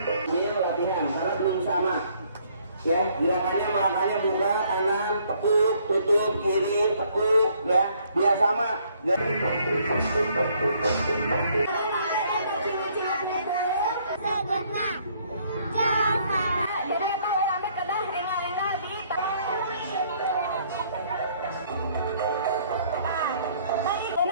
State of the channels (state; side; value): inverted; both; correlation -0.65